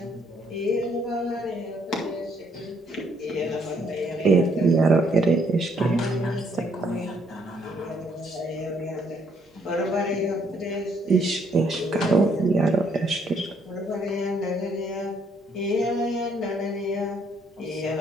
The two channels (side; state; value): both; normal; correlation 0.69